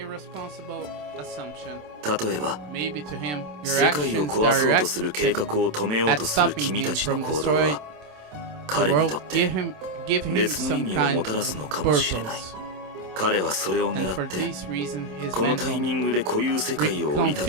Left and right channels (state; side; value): late; left; 27 ms